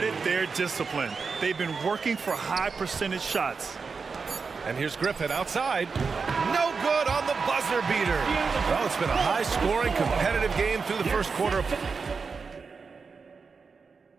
their discipline. They've been working for high percentage shots. And here's Griffin outside. No good on the buzzer beater. Well, it's been a high-scoring, competitive game through the first quarter.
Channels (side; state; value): left; quieter; 5.0 dB